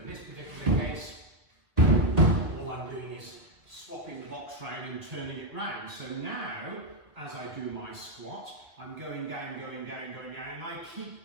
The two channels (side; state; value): left; late; 1.7 ms